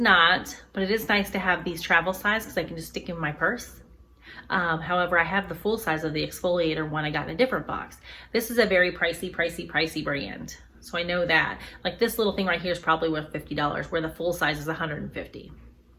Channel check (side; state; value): both; identical; correlation 1.00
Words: but it is nice to have these travel size because I can just stick in my purse. However, I have the full size of the exfoliator one I got in a different box. This is a very pricey brand. So I know that. Like this little thing right here is probably worth $50, where the full size is $150.